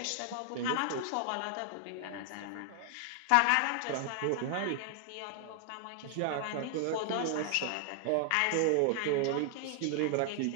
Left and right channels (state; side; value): different; both; correlation 0.00